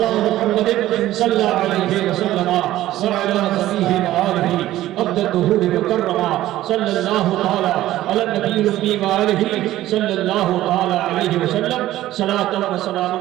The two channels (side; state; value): left; quieter; 14.7 dB